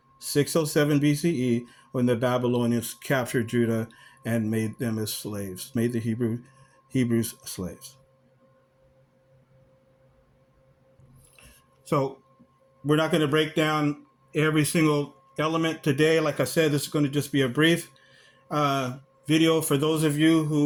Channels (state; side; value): identical; both; correlation 1.00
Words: 607 BCE, when the Babylonians captured Judah and made them as slaves, made the Hebrews slaves. So we're not going to break down every single element today. Like I said, this is going to just be a brief video for those of you